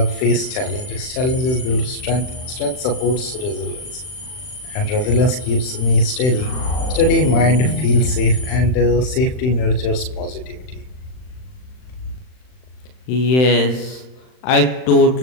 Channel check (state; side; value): late; right; 39 ms